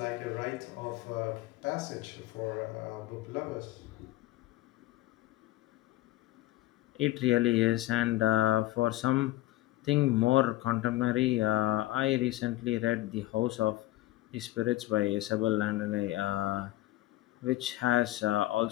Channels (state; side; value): quieter; right; 16.9 dB